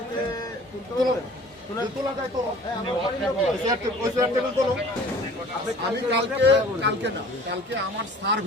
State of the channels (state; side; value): normal; both; correlation 0.47